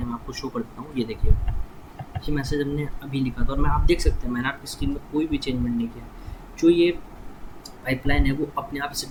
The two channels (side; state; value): both; identical; correlation 1.00